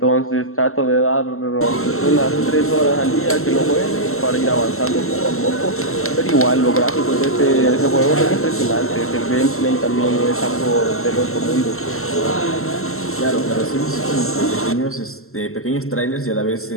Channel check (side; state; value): right; late; 0.62 ms